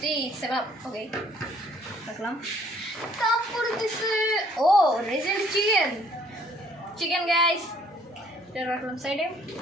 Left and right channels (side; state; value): both; normal; correlation 0.61